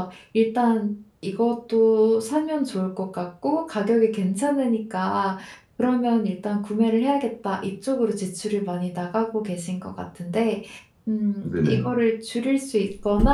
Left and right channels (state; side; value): identical; both; correlation 1.00